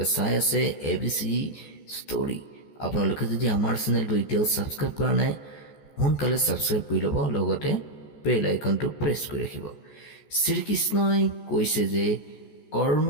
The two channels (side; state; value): right; late; 14 ms